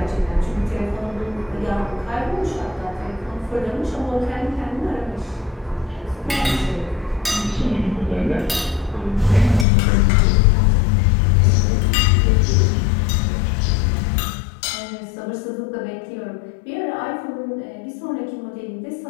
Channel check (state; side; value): drops out; right; at 9.7 s